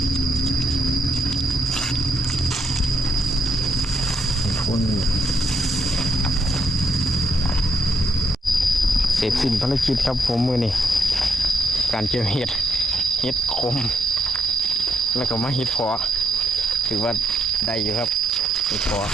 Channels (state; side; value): normal; both; correlation 0.77